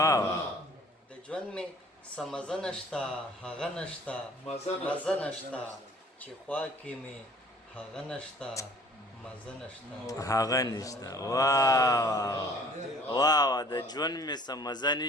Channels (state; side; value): normal; both; correlation 0.52